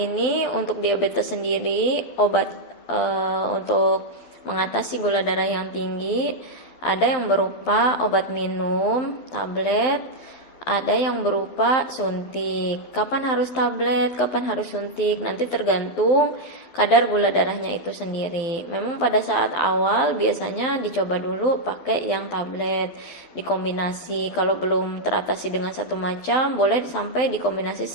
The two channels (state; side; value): late; right; 12 ms